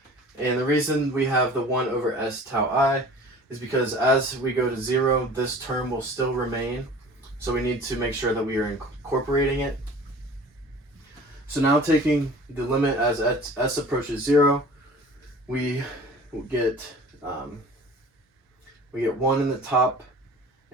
And the reason we have the 1 over S tau I is because as we go to 0, this term will still remain. So we need to make sure that we are incorporating it. So now taking the limit as S approaches 0, we get 1 in the top,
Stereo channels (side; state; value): both; normal; correlation 0.44